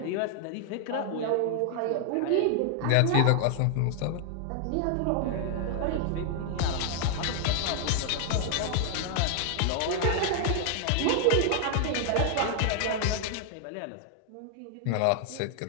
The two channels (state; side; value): different; both; correlation 0.00